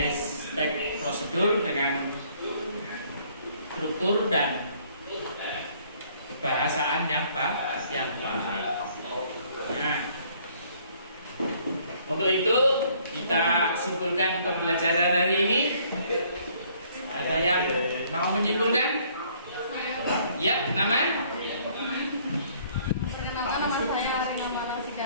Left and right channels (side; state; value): both; inverted; correlation -0.62